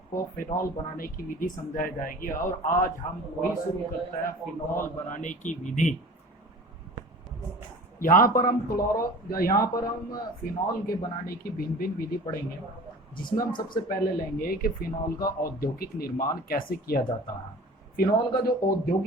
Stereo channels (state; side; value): normal; both; correlation 0.41